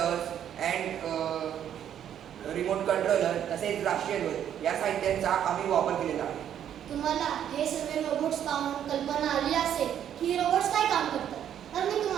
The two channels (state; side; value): quieter; left; 9.8 dB